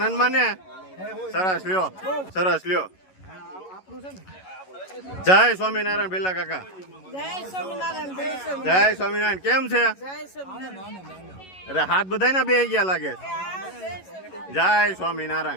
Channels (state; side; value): late; right; 11 ms